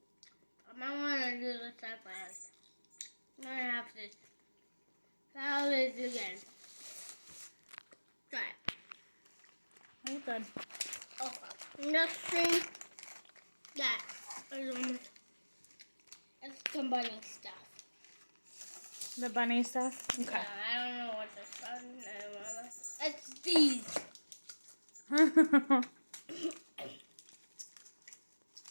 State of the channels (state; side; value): inverted; both; correlation -1.00